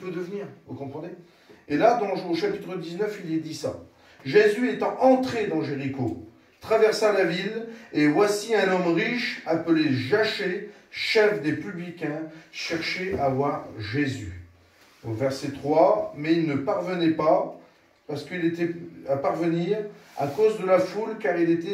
devenir. Vous comprenez? Et là, au chapitre 19, il est dit ça. Jésus étant entré dans Jéricho, traversa la ville, et voici un homme riche, appelé Jachée, chef des publicains, cherchait à voir Jésus. Au verset 3, mais il ne parvenait pas, parce qu'il était à parvenir à cause de la foule, car il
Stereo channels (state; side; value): identical; both; correlation 1.00